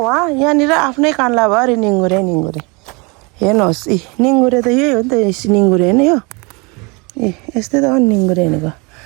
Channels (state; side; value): quieter; left; 29.0 dB